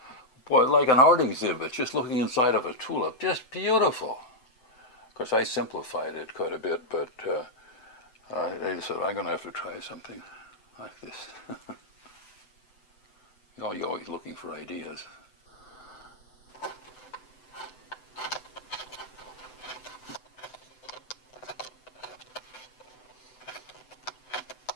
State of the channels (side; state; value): right; late; 7.9 ms